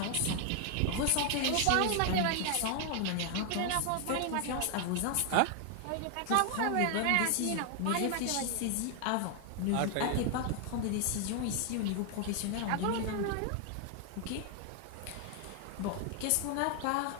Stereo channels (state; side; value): different; both; correlation 0.00